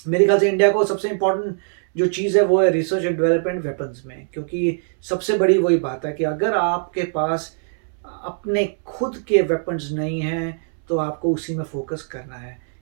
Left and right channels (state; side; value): silent; left; 63 dB below the other